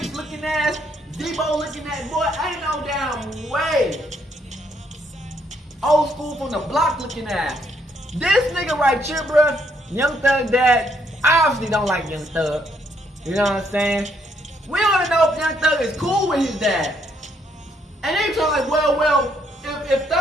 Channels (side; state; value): both; normal; correlation 0.72